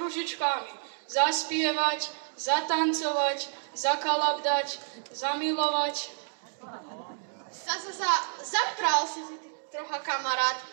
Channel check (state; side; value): silent; left; digital silence